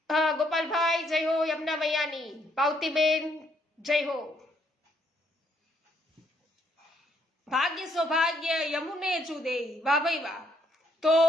ગોપાલભાઈ જય હો યમુના મૈયાની. પાવતીબેન જય હો. ભાગ્ય સૌભાગ્ય યમુને જુદે. વાહ ભાઈ વાહ. તો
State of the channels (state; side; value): normal; both; correlation 0.71